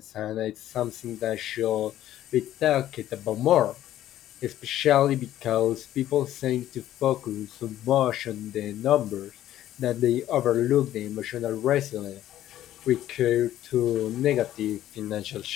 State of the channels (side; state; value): right; quieter; 12.8 dB